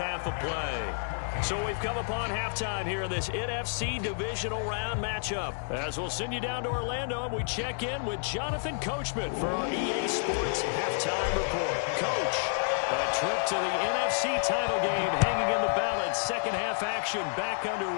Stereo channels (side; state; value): right; silent; digital silence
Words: of play. So we've come upon halftime here in this NFC divisional round matchup. As we'll send you down to Orlando, and we check in with Jonathan Coachman for our EA Sports halftime report. Coach, a trip to the NFC title game hanging in the balance. Second half action back